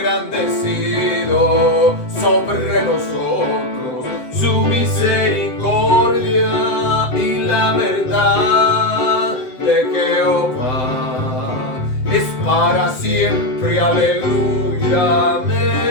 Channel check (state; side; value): late; right; 7.8 ms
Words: sobre nosotros su misericordia y la verdad de Jehová es para siempre, aleluya,